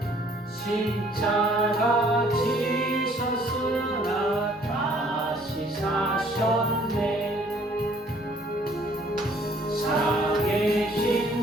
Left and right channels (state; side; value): normal; both; correlation 0.59